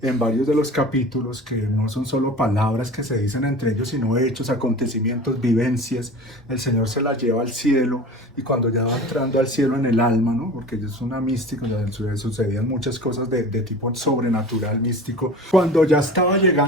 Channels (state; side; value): normal; both; correlation 0.37